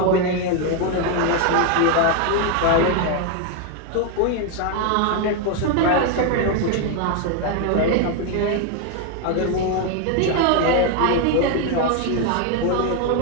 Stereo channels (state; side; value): different; both; correlation 0.01